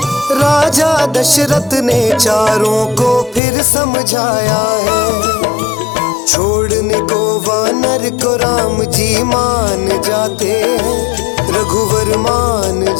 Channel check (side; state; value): right; drops out; at 3.4 s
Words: राजा दशरथ ने चारों को फिर समझाया है। छोड़ने को वानर को राम जी मान जाते हैं, रघुवर मान